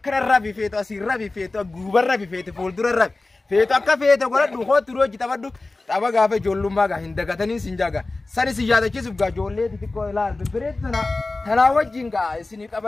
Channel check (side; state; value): right; quieter; 3.3 dB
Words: رابي فيتو أسير رابي فيتو غوبر رابي فيتو فولدر رابي فيتو أكا فيتو قرأ دوخو تروجي تابا دو تابا غافة جولو ماغا هندقا تنين سنجاغا ساني سيجادة كيسوف غا جولي تتكو إلال ببريتنا تناوجينغا إسني